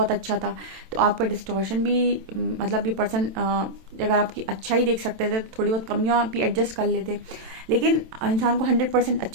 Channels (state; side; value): late; left; 27 ms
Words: अच्छा था, तो आपका डिस्टॉर्शन भी, मतलब ये पर्सन अगर आपकी अच्छा ही देख सकते थे, तो थोड़ी बहुत कमियां भी एडजस्ट कर लेते। लेकिन इंसान को 100%